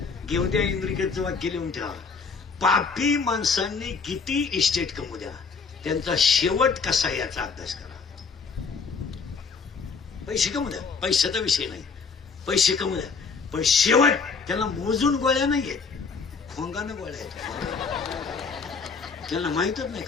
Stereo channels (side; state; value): right; quieter; 5.2 dB